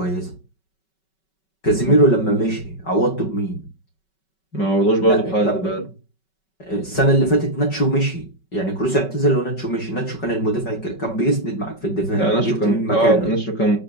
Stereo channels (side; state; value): right; late; 5.3 ms